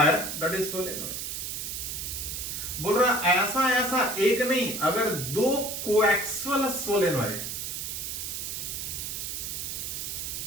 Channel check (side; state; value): right; noise; hiss, 4 dB below the sound